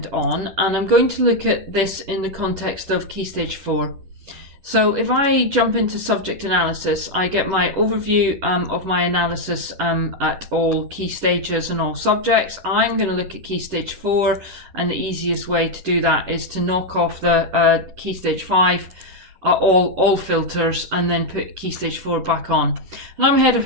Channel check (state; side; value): late; left; 11 ms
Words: on, and I'm going to look at this in the context of Key Stage 4. So if I jump into subject analysis, I get my overview of my analysis at all key stages and all subjects. I'm going to look at Key Stage 4, and the easiest way to do that is to knock off the Key Stage 5, all filters, and then put Key Stage 4 back on. And I'm head of